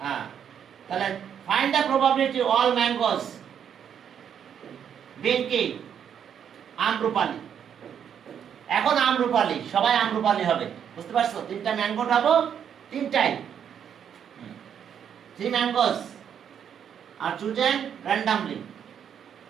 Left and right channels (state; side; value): quieter; left; 8.4 dB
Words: তাহলে find the probability all mangoes being কি? আম্রপালি। এখন আম্রপালি, সবাই আম্রপালি হবে, বুঝতে পারছো? 3টা ম্যাঙ্গো পাবো, 3টাই 3 mangoes are chosen randomly.